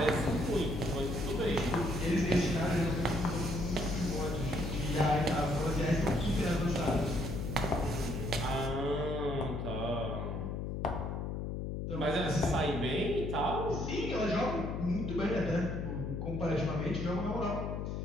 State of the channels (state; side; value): noise; left; hum, 3 dB below the sound